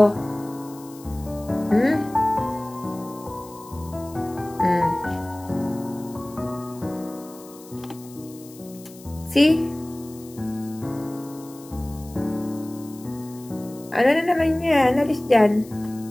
See? Ano na naman yan? Alis dyan.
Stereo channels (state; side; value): noise; left; hiss, 21 dB below the sound